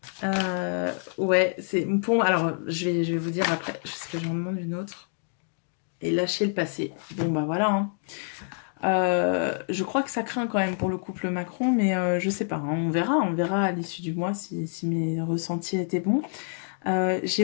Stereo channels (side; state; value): right; silent; 60 dB below the other